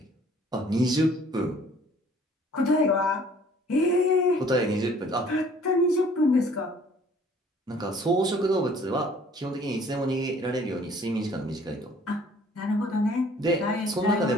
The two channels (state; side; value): normal; both; correlation 0.56